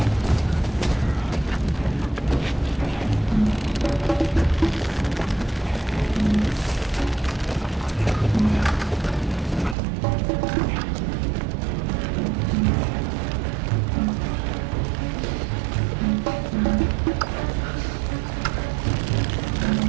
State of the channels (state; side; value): drops out; left; at 9.8 s